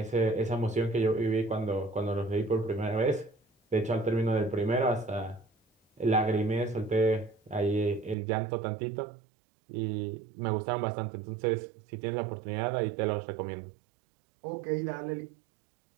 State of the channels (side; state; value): left; drops out; at 8.2 s